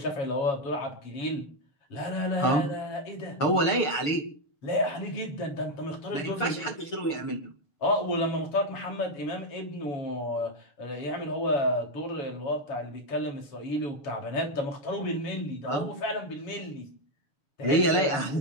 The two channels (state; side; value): late; right; 6.8 ms